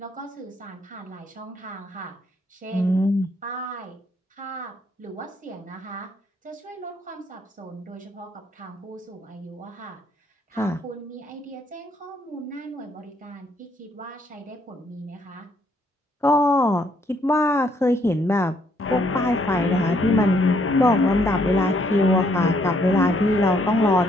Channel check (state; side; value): normal; both; correlation 0.69